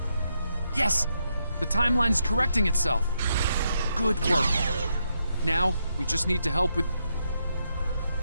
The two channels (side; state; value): both; inverted; correlation -0.80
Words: Yes! The timeline is correcting itself. Good work. Now, we just need to help with...